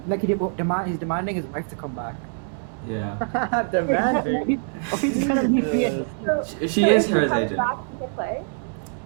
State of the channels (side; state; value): left; silent; digital silence